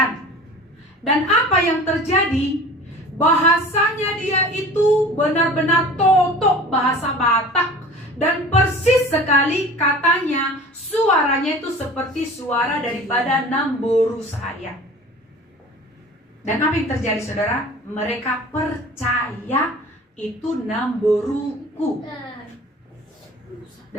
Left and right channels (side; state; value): both; normal; correlation 0.41